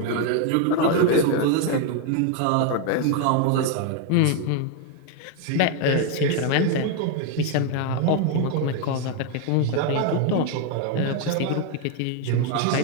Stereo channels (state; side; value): different; both; correlation 0.01